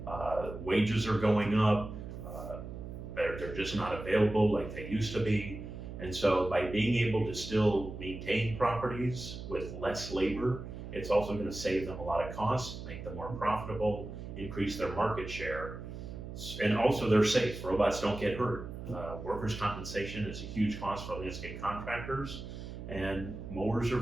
Wages are going up. They're just not available like they used to be. And so by being able to still maintain properties with less labor, it's also going to save them a lot of costs, make them more profitable, increase their market share. And also they're safe. Robots don't get hurt. Workers' compensation is a huge cost for landscape contractors, and mowers are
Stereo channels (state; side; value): noise; right; hum, 9 dB below the sound